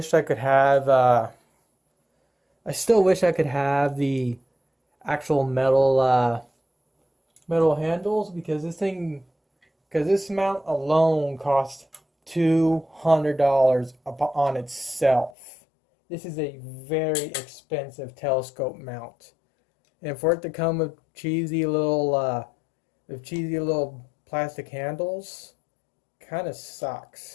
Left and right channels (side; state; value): right; drops out; at 15.4 s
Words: I could have the actual metal handles, because this mount alone costs $200 on itself. This is a very expensive telescope mount, and for it to come with cheesy little plastic handles, kind of